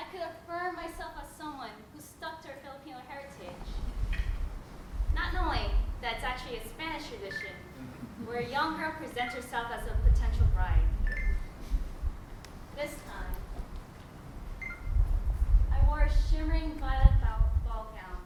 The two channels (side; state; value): both; identical; correlation 1.00